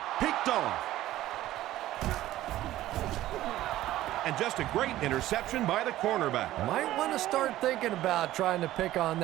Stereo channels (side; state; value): left; quieter; 14.8 dB